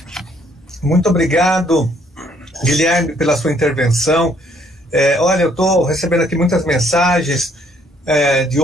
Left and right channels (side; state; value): both; normal; correlation 0.65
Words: Muito obrigado, Guilherme, pela sua intervenção. Olha, eu estou recebendo aqui muitas mensagens de